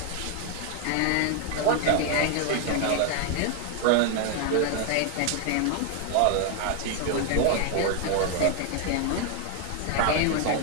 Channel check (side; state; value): both; different; correlation 0.01